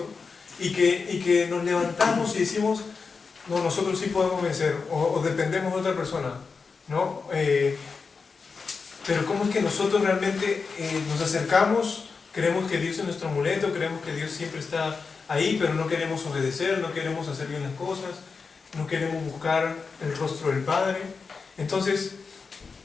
y que nos levantamos y decimos, no, nosotros sí podemos vencer, o dependemos de otra persona, ¿no? Pero ¿cómo es que nosotros realmente nos acercamos? Creemos que Dios es nuestro amuleto, creemos que Dios siempre está ahí, pero no queremos obedecer, no queremos hacer bien las cosas, no queremos buscar el rostro del Padre. Entonces,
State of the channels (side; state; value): right; quieter; 4.9 dB